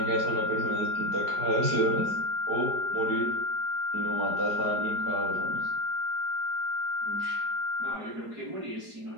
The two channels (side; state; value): left; late; 4.9 ms